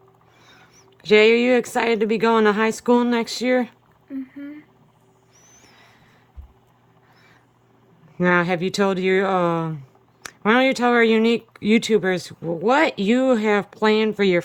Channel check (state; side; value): identical; both; correlation 1.00